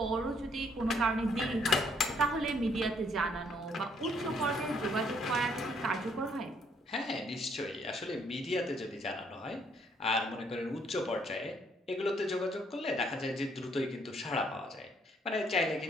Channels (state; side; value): normal; both; correlation 0.67